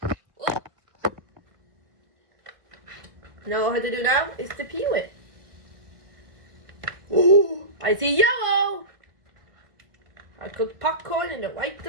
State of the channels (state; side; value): late; left; 1.8 ms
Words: Oh. Now all I have to do now is to peel it. Ooh, I see yellow. I cooked popcorn in the right